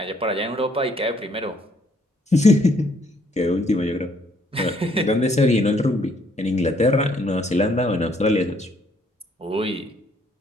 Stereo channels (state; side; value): normal; both; correlation 0.67